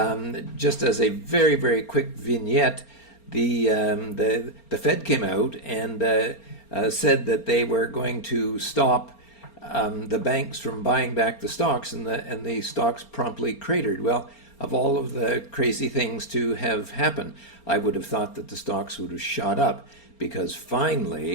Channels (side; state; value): right; late; 4.3 ms